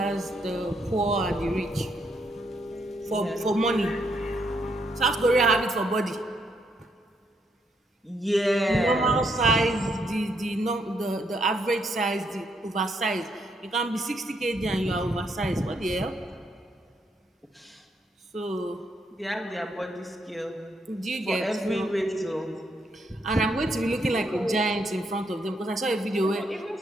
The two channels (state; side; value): normal; both; correlation 0.75